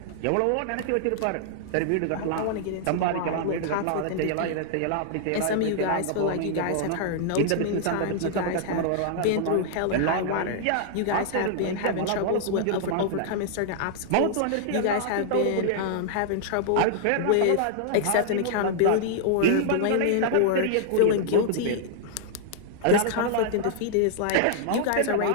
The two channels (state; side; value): different; both; correlation -0.01